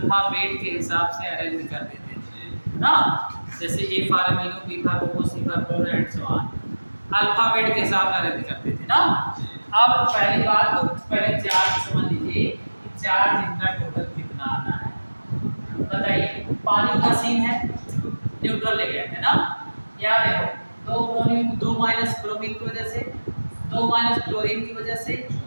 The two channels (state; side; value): inverted; both; correlation -1.00